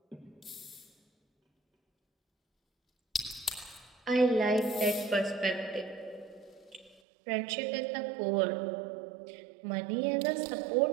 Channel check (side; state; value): left; drops out; at 7.0 s